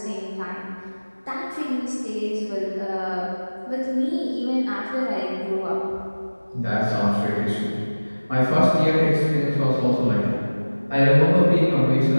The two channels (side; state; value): both; inverted; correlation -1.00